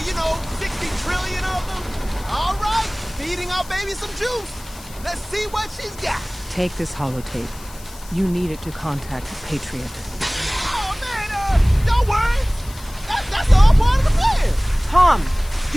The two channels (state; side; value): noise; left; hiss, 19 dB below the sound